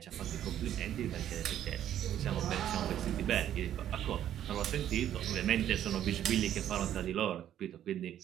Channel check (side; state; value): left; quieter; 11.0 dB